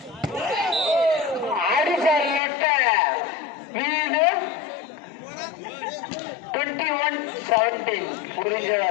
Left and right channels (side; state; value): right; drops out; at 2.4 s